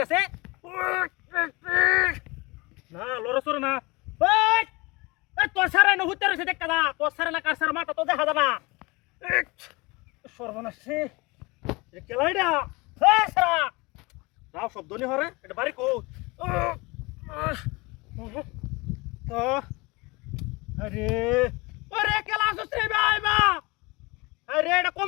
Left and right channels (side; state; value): right; quieter; 24.8 dB